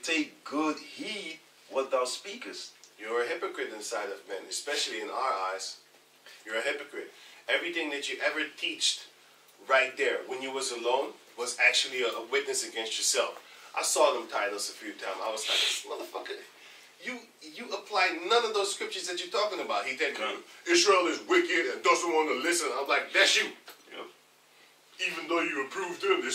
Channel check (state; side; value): identical; both; correlation 1.00